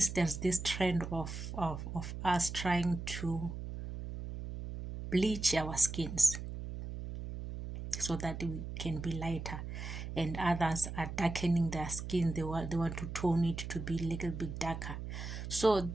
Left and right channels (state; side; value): noise; right; hum, 7 dB below the sound